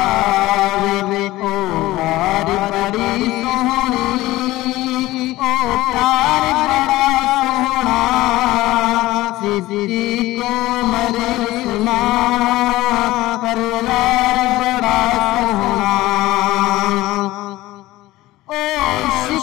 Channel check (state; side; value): quieter; right; 17.6 dB